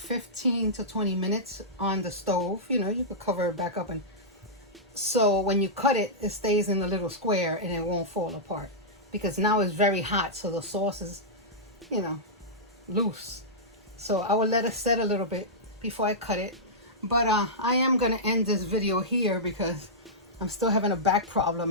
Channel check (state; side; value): normal; both; correlation -0.13